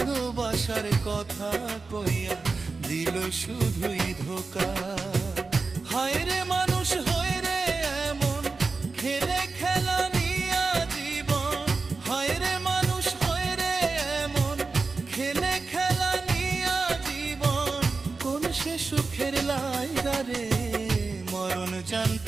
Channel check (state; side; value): quieter; left; 4.1 dB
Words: কথা কইয়া দিল শুধুই ধোকা। হায় রে মানুষ হয়ে রে এমন খেলে খেলা নিয়া জীবন, হায় রে মানুষ হয়ে রে এমন খেলে খেলা নিয়া জীবন। কোন সে সুখের লাইগা রে মরণ